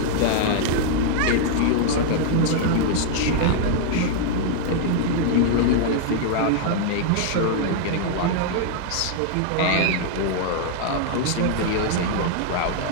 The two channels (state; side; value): different; both; correlation 0.00